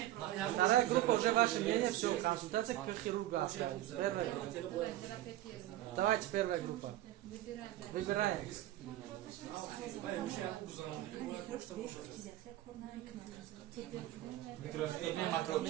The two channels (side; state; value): left; quieter; 14.4 dB